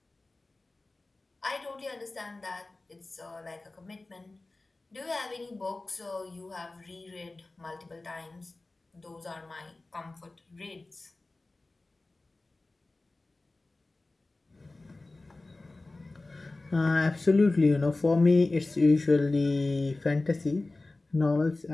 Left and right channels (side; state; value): right; quieter; 3.1 dB